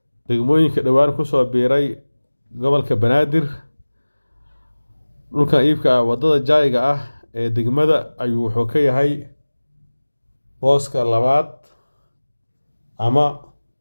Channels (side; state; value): both; inverted; correlation -1.00